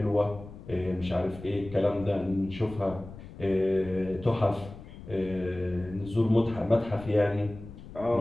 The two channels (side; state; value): left; noise; rumble, 15 dB below the sound